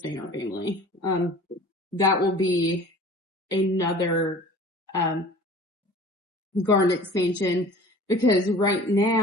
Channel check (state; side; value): normal; both; correlation 0.44